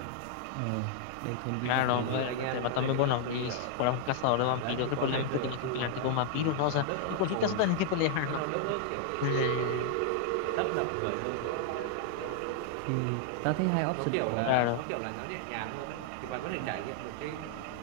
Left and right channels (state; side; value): different; both; correlation 0.00